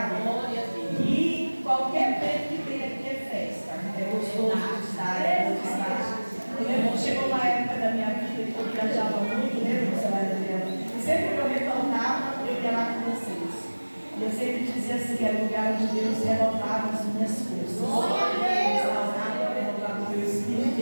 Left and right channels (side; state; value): both; inverted; correlation -1.00